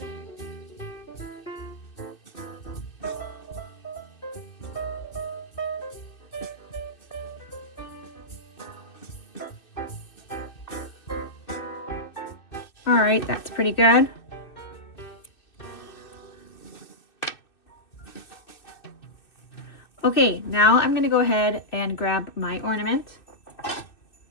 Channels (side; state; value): right; late; 2.6 ms